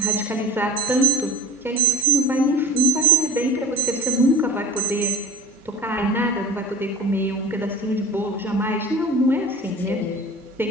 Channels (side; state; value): both; normal; correlation 0.38